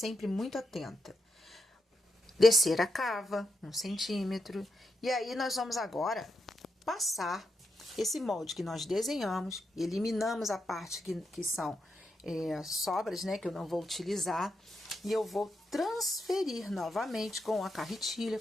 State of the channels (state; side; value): normal; both; correlation 0.84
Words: muito atenta. Descer a cava, 1 centímetro. E aí, nós vamos agora passar esse molde que nós desenhamos, eliminamos a parte que são sobras, né? Que eu não vou utilizar. E eu vou transferir novamente com a carretilha,